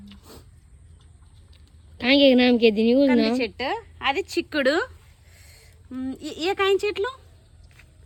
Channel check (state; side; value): identical; both; correlation 1.00